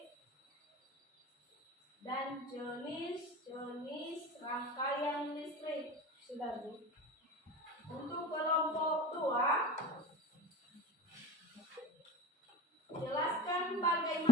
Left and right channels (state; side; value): normal; both; correlation 0.33